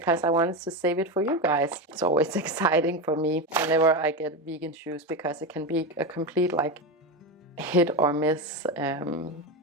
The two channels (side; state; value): both; normal; correlation 0.16